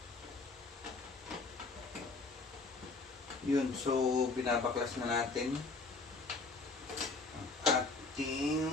Yun, so binabaklas na natin ang ating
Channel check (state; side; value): quieter; right; 3.7 dB